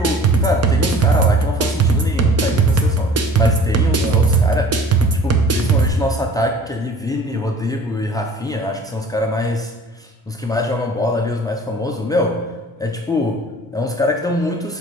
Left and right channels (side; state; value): both; normal; correlation 0.47